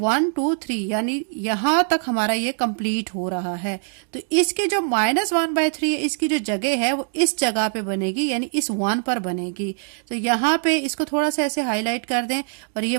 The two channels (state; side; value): silent; left; 64 dB below the other